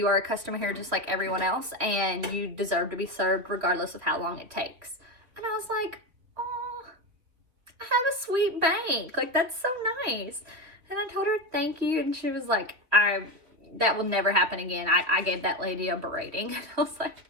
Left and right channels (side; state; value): left; late; 3.0 ms